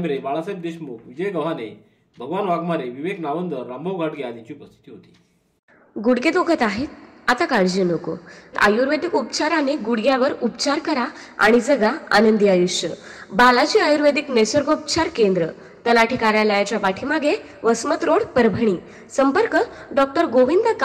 बाळासाहेब देशमुख, विजय गव्हाणे, भगवान वाघमारे, विवेक नावंदर, रामभाऊ गाडगे आदींची उपस्थिती होती। गुडघे दुखत आहेत? आता काळजी नको। आयुर्वेदिक उपचाराने गुडघ्यावर उपचार करा आणि जगा आनंदी आयुष्य। बालाजी आयुर्वेदिक निसर्गोपचार केंद्र, तलाठी कार्यालयाच्या पाठीमागे, वसमत रोड, परभणी। संपर्क डॉक्टर गोविंद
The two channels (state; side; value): identical; both; correlation 1.00